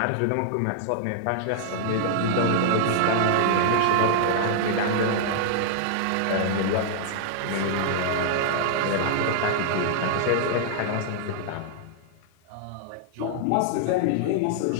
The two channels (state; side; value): different; both; correlation -0.01